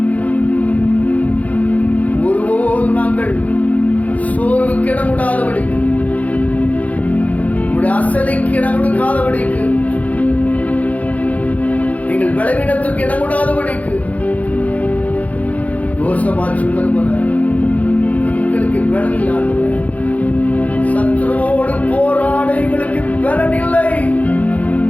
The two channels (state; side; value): late; right; 0.071 ms